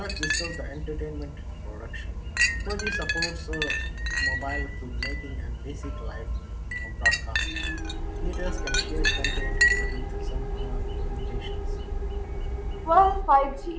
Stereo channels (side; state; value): both; identical; correlation 1.00